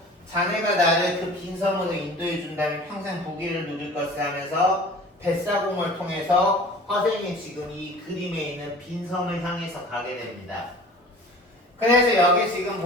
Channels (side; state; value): both; normal; correlation 0.44